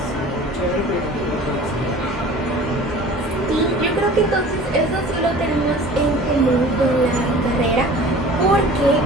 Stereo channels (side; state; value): both; normal; correlation 0.44